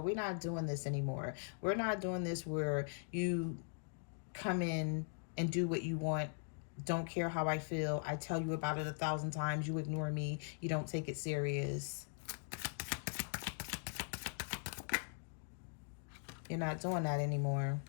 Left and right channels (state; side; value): silent; right; digital silence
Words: we're not doing this anymore. We're not doing this where you come in and do what you want. Don't care how I feel. I tell you about it 1,000 times. You ignore me. You don't take it serious. You're not doing that anymore.